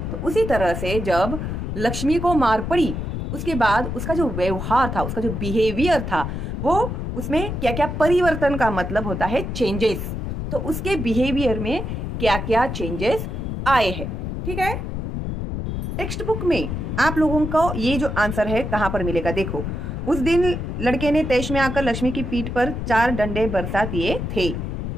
तो उसी तरह से जब लक्ष्मी को मार पड़ी, उसके बाद उसका जो व्यवहार था, उसका जो बिहेवियर था, वो उसमें क्या क्या परिवर्तन का मतलब होता है चेंजेस। तो उसके बिहेवियर में क्या क्या चेंजेस आए हैं, ठीक है। टेक्स्ट बुक में आप लोगों को ये जो आंसर है कहाँ पर मिलेगा, देखो। उस दिन लड़के ने तैश में आकर लक्ष्मी की पीठ पर 4 डंडे बरसा दिए थे,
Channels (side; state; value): left; noise; rumble, 4 dB below the sound